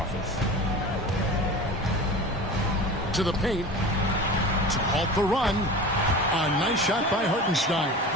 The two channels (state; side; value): normal; both; correlation 0.34